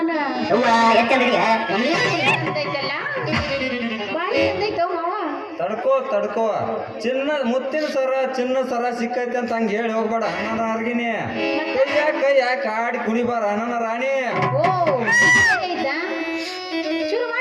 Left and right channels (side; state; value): both; identical; correlation 1.00